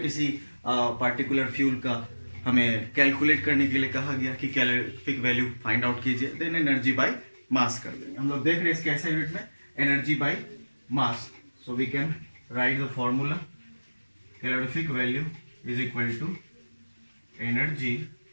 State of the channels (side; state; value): both; inverted; correlation -1.00